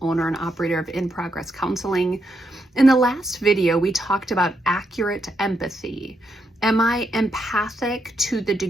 owner and operator of In Progress Counseling. In the last video, we talked about accurate empathy. Am I empathic to the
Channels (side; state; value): both; normal; correlation 0.80